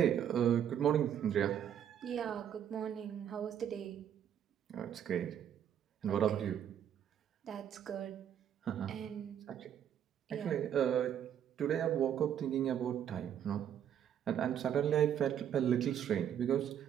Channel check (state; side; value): quieter; left; 9.5 dB